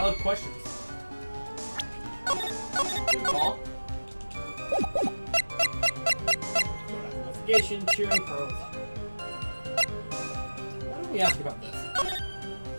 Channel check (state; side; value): inverted; both; correlation -1.00